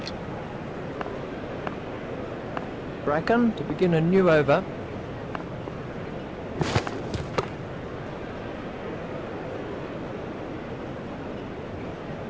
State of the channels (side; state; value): both; identical; correlation 1.00